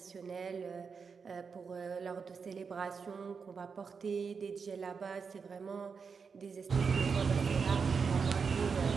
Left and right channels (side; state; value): left; quieter; 5.6 dB